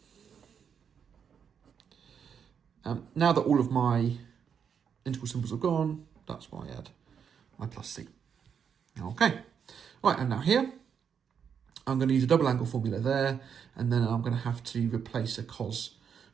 Now that all of my integral symbols are gone, that's why I add my plus c. Okay, right, and now here, I'm going to use a double angle formula there, and then I'm going to have to replace a cos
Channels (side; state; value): left; quieter; 7.3 dB